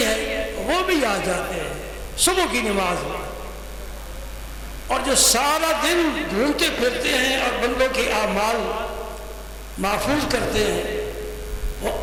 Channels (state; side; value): identical; both; correlation 1.00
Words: ہے وہ بھی آ جاتے ہیں صبح کی نماز میں، اور جو سارا دن گھومتے پھرتے ہیں اور بندوں کے اعمال محفوظ کرتے ہیں، وہ